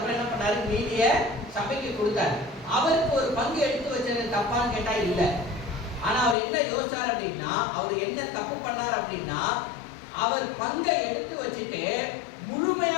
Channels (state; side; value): drops out; right; at 6.4 s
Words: என்ன பண்ணாரு? மீதிய சபைக்கு கொடுத்தாரு. அவருக்கு ஒரு பங்கு எடுத்து வச்சது தப்பான்னு கேட்டா இல்ல. ஆனா அவர் என்ன யோசிச்சார் அப்படின்னா, அவர் என்ன தப்பு பண்ணார் அப்படின்னா, அவர் பங்கை எடுத்து வச்சுட்டு